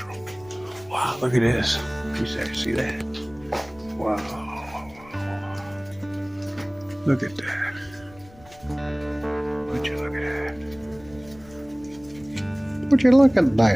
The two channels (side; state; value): left; noise; rumble, 23 dB below the sound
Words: Wow, look at this. You see that? Wow. Look at that. Would you look at that? Would you look at